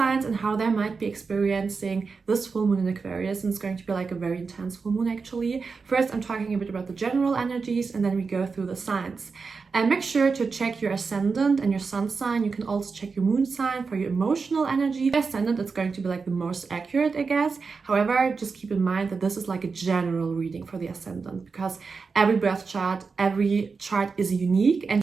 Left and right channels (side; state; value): left; quieter; 4.8 dB